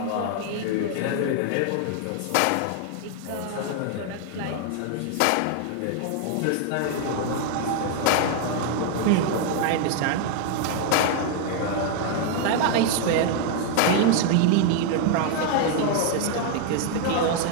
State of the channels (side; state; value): both; different; correlation 0.00